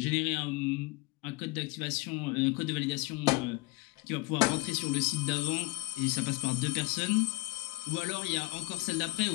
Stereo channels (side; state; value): right; quieter; 22.4 dB